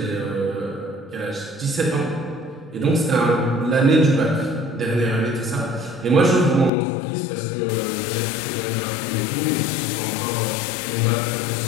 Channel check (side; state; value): right; drops out; at 6.7 s